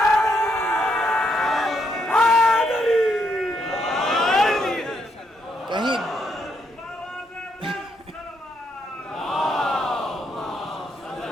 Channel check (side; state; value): both; normal; correlation 0.76